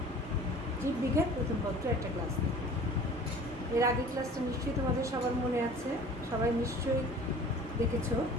জীববিজ্ঞান প্রথম পত্র একটা ক্লাস নেব। এর আগের ক্লাসটা নিশ্চয়ই তোমাদের সবার মনে আছে, সবাই নিশ্চয়ই দেখেছো।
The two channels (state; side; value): normal; both; correlation 0.45